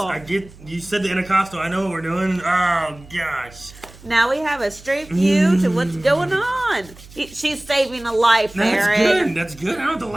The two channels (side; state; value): right; noise; hum, 21 dB below the sound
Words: get, you said the intercostal. I know what we're doing. Oh, gosh. Now we have a straight view to what's going on. She's saving a life, That's Aaron. good. That's good. I don't have to